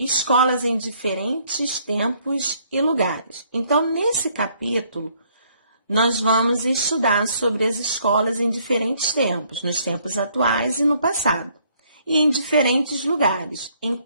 em diferentes tempos e lugares. Então, nesse capítulo, nós vamos estudar sobre as escolas em diferentes tempos, nos tempos atuais e no passado, e em diferentes lugares, em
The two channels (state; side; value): inverted; both; correlation -0.66